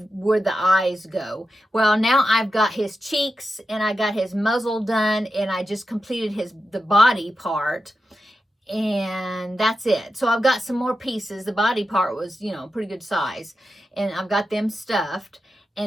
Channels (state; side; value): normal; both; correlation 0.90